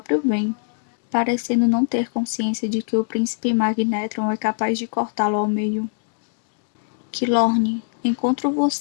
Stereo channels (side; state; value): right; silent; digital silence